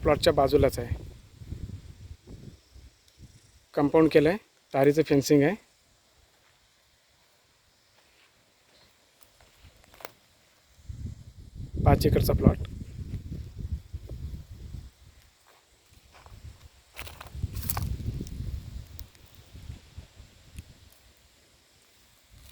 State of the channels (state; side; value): identical; both; correlation 1.00